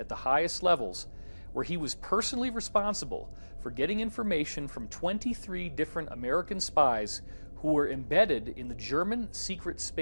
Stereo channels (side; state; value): both; inverted; correlation -1.00